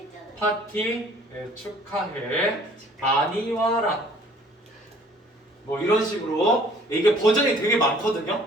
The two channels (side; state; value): both; normal; correlation 0.55